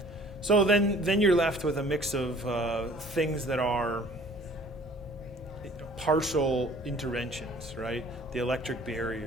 So then you're left with a mix of things that are partial interventions, right? The electric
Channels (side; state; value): both; normal; correlation 0.52